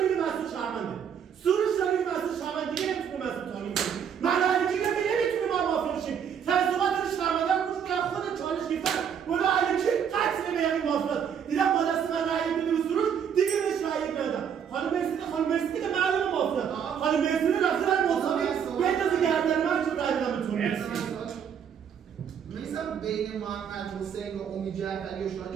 که مسعود شهرونده، سروش داری که مسعود شهرونده. دیگه نمیتونه مسعود تانی کنی. من علی کینگ دیگه نمیتونه ما مافیا شیم. تصوبات داری شهرونده رو گوش کنم. خود چالش گرفتم ولی علی کینگ قطعه به یعنی مافیا. دیدم با دست من رأی بده به سروش، دیگه بهش رأی ندادم. خانم مرسد که معلومه مافیا. خانم مرسد رفته در مساوی بندازه گردن من چون رأی بدم بهتون. می‌سم بین محمد حسین و امید جعفری و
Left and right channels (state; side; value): quieter; left; 7.9 dB